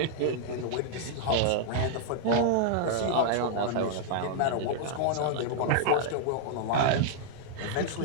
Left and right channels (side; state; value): both; different; correlation -0.01